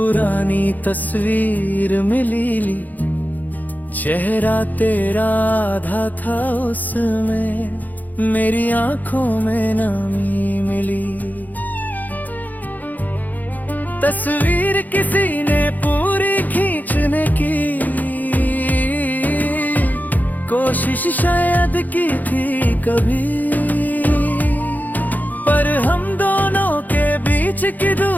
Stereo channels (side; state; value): right; late; 0.082 ms